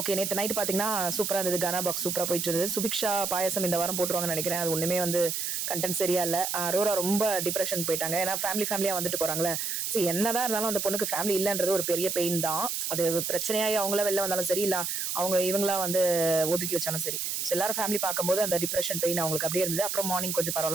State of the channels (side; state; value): right; noise; hiss, 2 dB below the sound